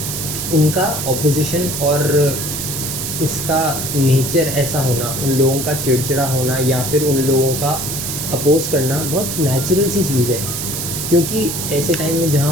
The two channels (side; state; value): right; noise; hiss, 4 dB below the sound